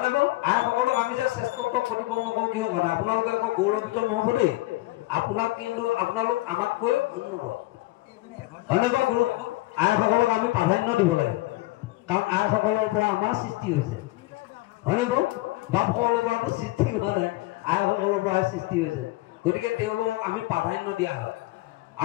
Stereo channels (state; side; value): quieter; right; 19.5 dB